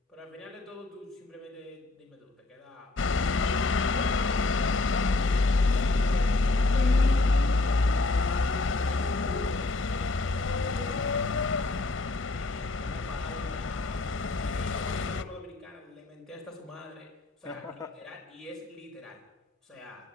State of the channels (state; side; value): quieter; right; 3.2 dB